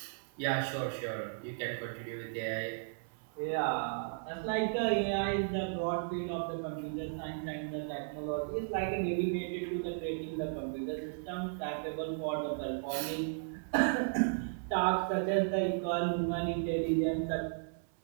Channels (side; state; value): left; silent; 54 dB below the other